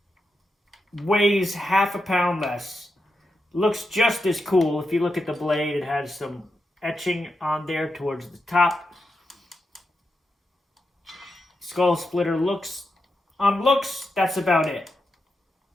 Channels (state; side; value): normal; both; correlation 0.86